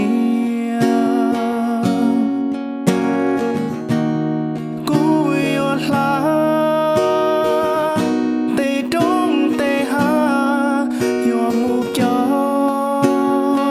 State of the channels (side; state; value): both; identical; correlation 1.00